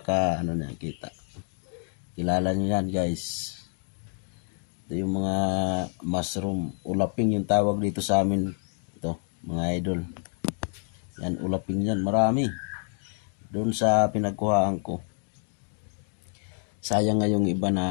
kita. Kilala nyo yan guys. Ito yung mga mushroom. Ulaping yung tawag dito sa amin. Ito mga idol. Yan, ulaping yan. Marami. Doon sa pinagkuhaan ko. Sayang nga yung iba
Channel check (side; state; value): right; silent; 59 dB below the other